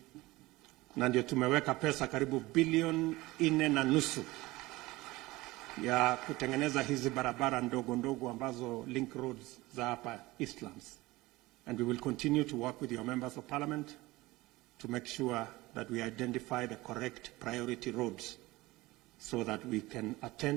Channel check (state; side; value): quieter; left; 20.0 dB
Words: na ndio tumeweka pesa karibu bilioni 4.5 ya kutengeneza hizi barabara ndogo ndogo ambazo link roads za hapa Eastlands. And we will continue to work with your members of parliament to make sure that we identify the correct priority roads so that we can